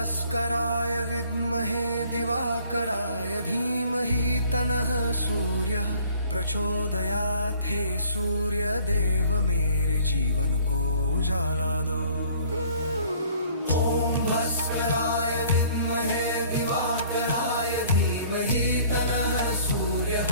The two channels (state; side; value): inverted; both; correlation -0.55